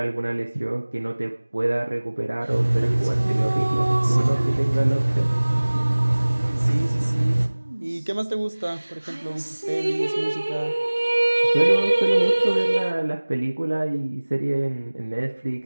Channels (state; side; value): inverted; both; correlation -1.00